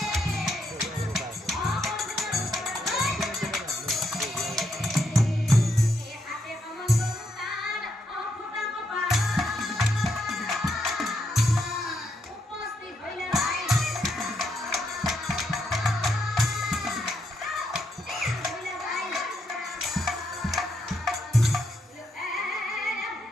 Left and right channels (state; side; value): normal; both; correlation 0.78